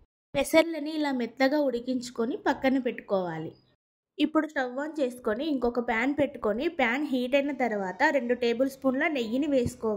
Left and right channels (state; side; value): identical; both; correlation 1.00